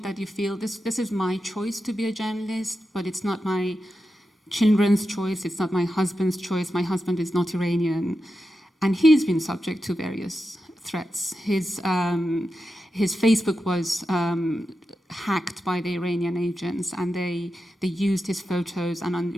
that you feel this is my choice to be a journalist, but it's not my children's choice, it's not my husband's choice. My husband is not Iranian, and he's been subject to various threats. His Facebook was hacked by the Iranian agents, and they used his photos, and on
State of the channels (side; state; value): both; normal; correlation 0.90